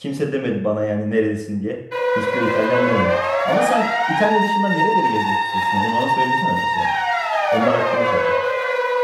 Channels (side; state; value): both; identical; correlation 1.00